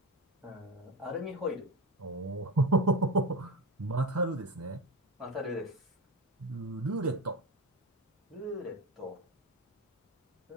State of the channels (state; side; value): normal; both; correlation 0.22